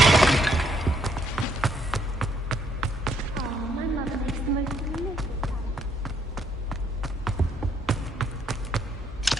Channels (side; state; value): both; normal; correlation 0.71